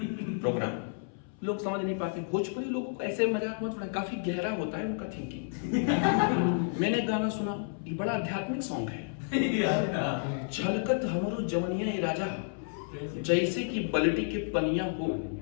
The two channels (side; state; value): right; silent; 57 dB below the other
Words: प्रोग्राम, लोग समझ नहीं पाते। भोजपुरी लोगों को ऐसे मजाक मत उड़ाएं, काफी गहरा होता है उनका थिंकिंग। मैंने गाना सुना, ये बड़ा आध्यात्मिक सॉन्ग है। छलकत हमरो जवनिया ए राजा, जैसे कि बल्टी के पनिया हो,